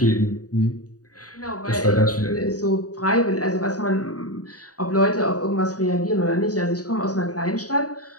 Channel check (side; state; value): right; late; 0.67 ms